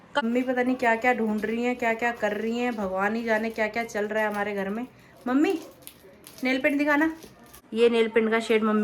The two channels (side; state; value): both; identical; correlation 1.00